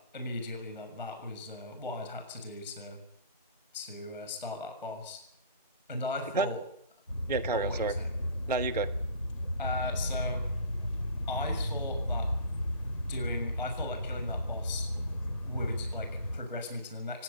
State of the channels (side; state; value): both; inverted; correlation -0.49